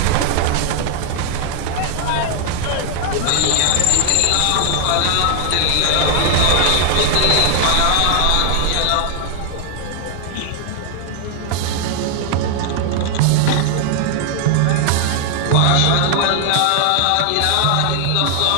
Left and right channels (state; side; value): different; both; correlation 0.00